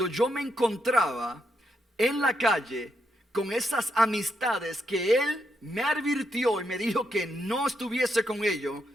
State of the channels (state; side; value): normal; both; correlation 0.81